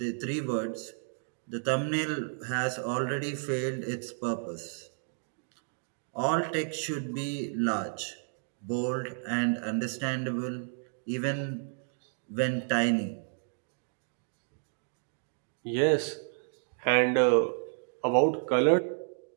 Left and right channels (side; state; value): left; silent; digital silence